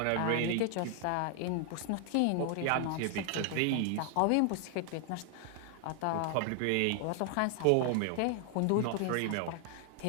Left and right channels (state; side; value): different; both; correlation 0.00